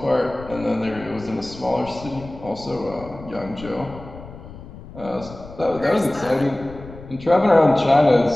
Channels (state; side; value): noise; left; rumble, 16 dB below the sound